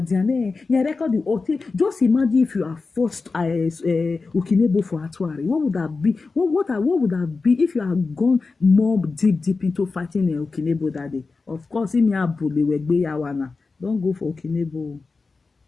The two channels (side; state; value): right; quieter; 4.1 dB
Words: you record the OT. Just imagine if you are forced Ukinebo for Atuari. What would that be? What would that be if you had gone more deep into fighting Ukinebo that day? Of course, in your bully we yawana. Don't go for Ukinebo.